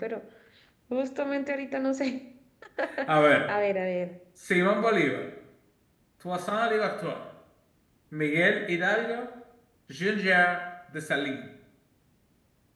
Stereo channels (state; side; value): identical; both; correlation 1.00